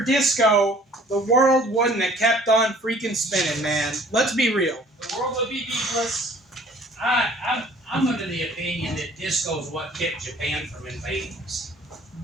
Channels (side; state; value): both; normal; correlation 0.53